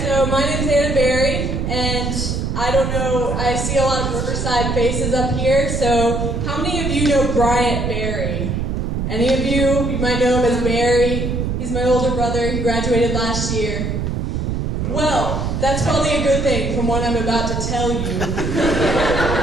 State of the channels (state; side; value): noise; right; rumble, 1 dB below the sound